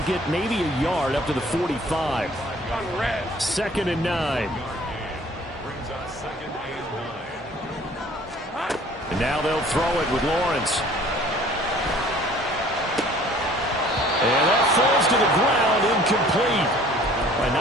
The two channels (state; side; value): normal; both; correlation 0.52